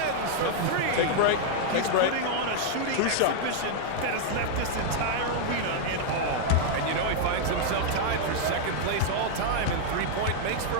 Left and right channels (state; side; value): different; both; correlation 0.00